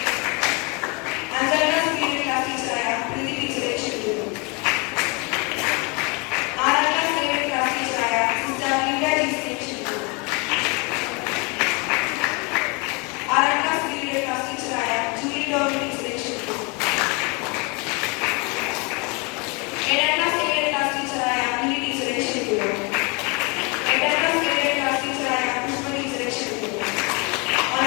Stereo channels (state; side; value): quieter; right; 30.2 dB